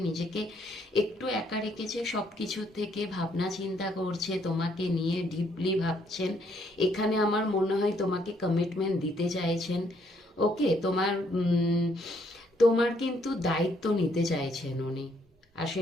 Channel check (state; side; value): normal; both; correlation 0.70